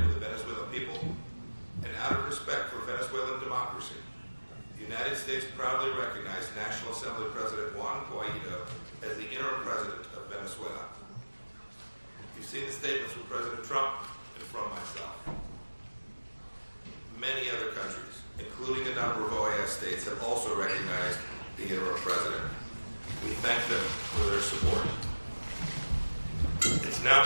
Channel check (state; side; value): inverted; both; correlation -1.00